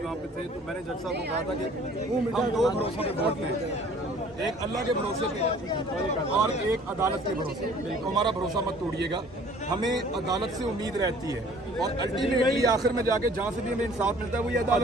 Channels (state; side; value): normal; both; correlation 0.53